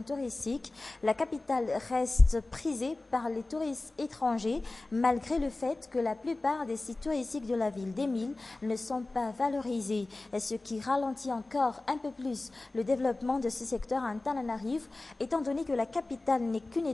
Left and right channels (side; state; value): right; quieter; 3.0 dB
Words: touristique. La capitale reste prisée par les touristes étrangers, malgré le fait que la plupart des sites touristiques de la ville d'Emile ne sont pas valorisés, ce qui ralentit encore un peu plus le développement de ce secteur à Antananarivo, étant donné que la capitale n'est qu'une